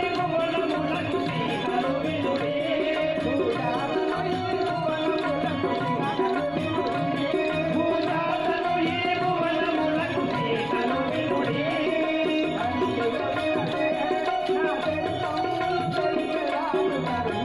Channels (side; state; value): left; noise; rumble, 23 dB below the sound